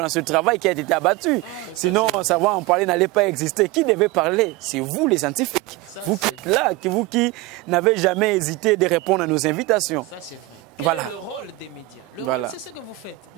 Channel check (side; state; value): left; quieter; 19.3 dB